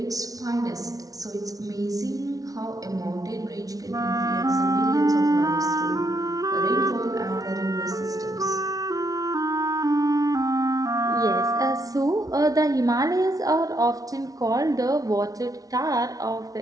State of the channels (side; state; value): left; late; 0.18 ms